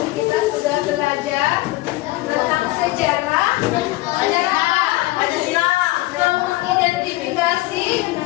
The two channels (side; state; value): right; quieter; 19.4 dB